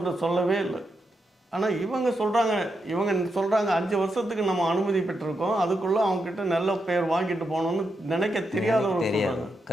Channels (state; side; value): normal; both; correlation 0.84